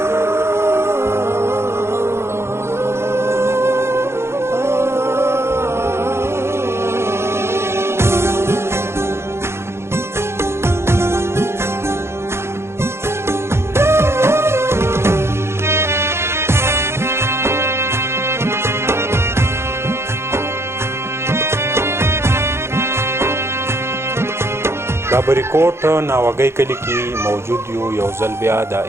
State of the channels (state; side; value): late; left; 0.12 ms